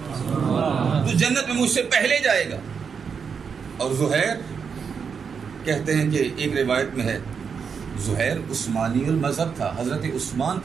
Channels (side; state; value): left; quieter; 6.3 dB